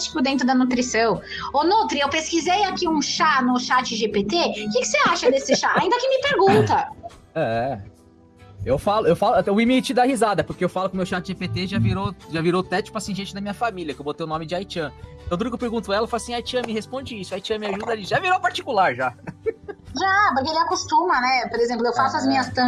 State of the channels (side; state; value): both; identical; correlation 1.00